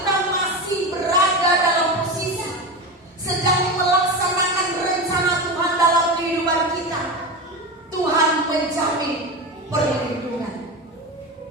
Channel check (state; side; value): normal; both; correlation 0.22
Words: masih berada dalam posisi sedang melaksanakan rencana Tuhan dalam kehidupan kita, Tuhan menjamin perlindungan.